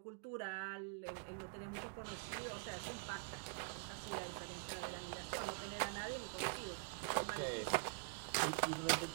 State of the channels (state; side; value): quieter; left; 33.2 dB